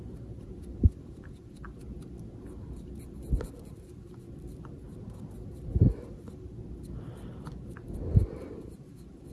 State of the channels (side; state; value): both; identical; correlation 1.00